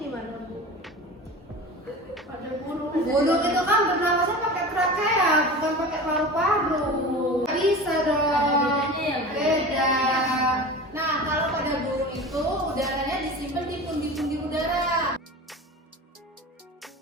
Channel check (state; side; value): normal; both; correlation 0.33